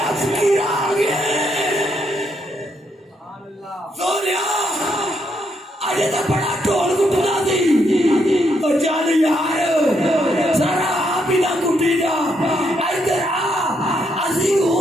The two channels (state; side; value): normal; both; correlation 0.76